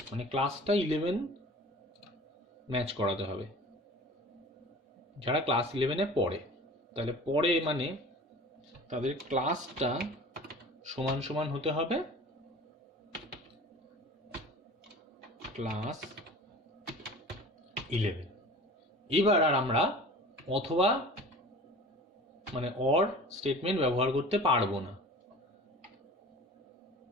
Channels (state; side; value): normal; both; correlation 0.40